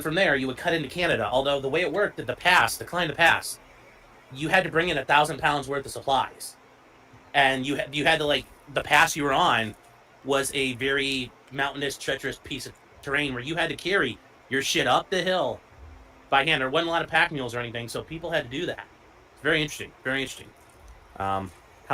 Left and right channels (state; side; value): identical; both; correlation 1.00